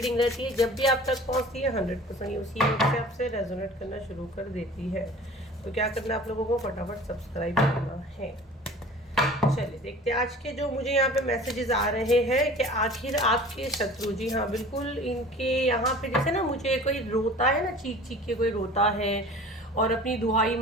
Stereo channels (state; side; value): normal; both; correlation 0.43